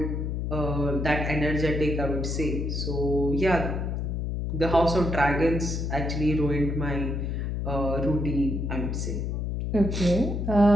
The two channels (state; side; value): noise; left; hum, 2 dB below the sound